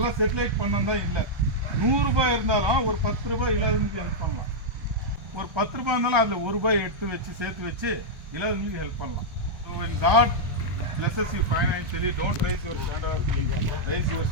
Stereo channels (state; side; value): late; left; 1.2 ms